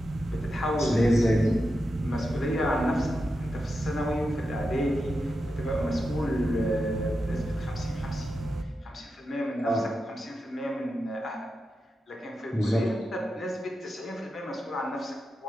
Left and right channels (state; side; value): normal; both; correlation 0.89